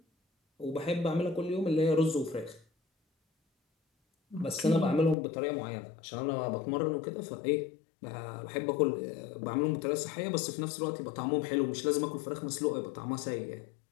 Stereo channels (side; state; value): right; drops out; at 5.2 s